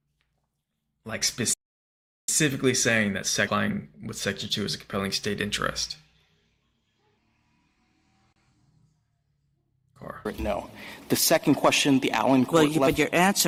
that complying with Section 2 is a compelling state interest. No. The second question, the Allen court. Well, but you're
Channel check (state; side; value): identical; both; correlation 1.00